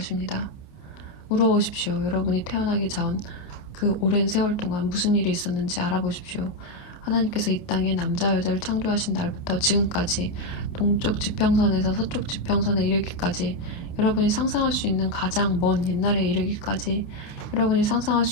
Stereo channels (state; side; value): late; right; 29 ms